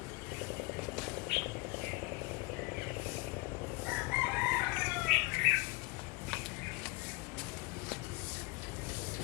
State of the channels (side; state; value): right; quieter; 25.3 dB